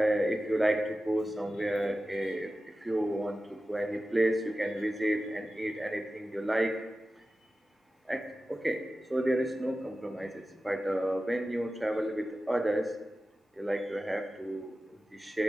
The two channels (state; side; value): normal; both; correlation 0.94